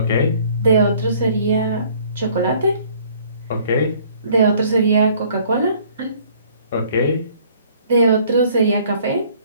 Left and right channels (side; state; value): both; inverted; correlation -0.58